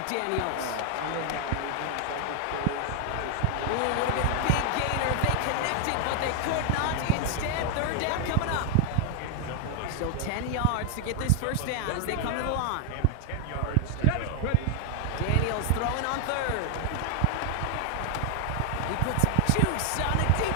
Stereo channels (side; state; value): both; different; correlation 0.00